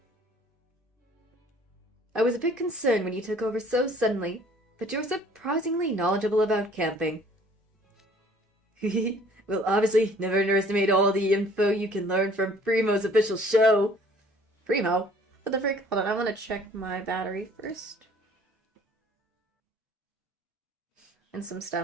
I was a bit concerned when you took over so suddenly, but you're surprisingly knowledgeable about camping. Well, obviously, never underestimate all the info you can learn from Primo's official show. Primo? What the frick? Hold on, I want to check my battery first. And some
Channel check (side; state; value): both; normal; correlation 0.55